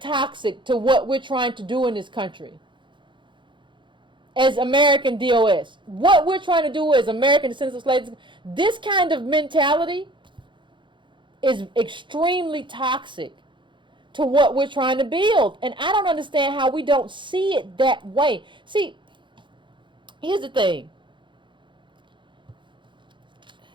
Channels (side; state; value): left; late; 0.23 ms